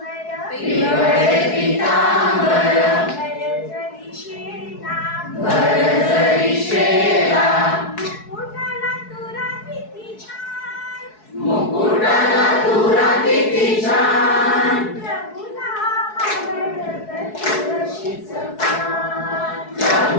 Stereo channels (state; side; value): late; right; 4.7 ms